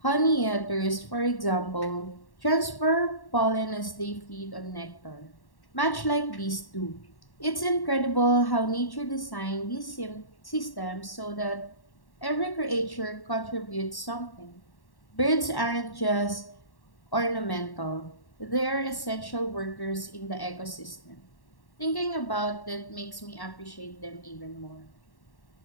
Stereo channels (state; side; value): late; right; 1.1 ms